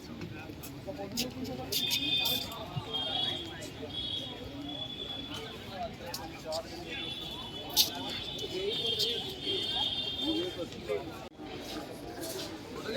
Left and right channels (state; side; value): identical; both; correlation 1.00